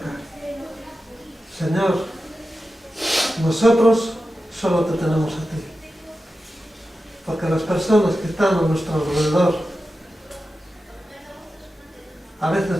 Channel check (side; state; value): both; normal; correlation 0.92